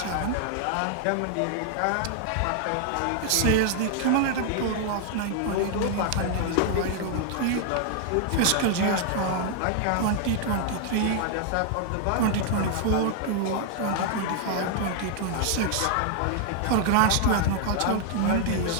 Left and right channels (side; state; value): both; different; correlation 0.00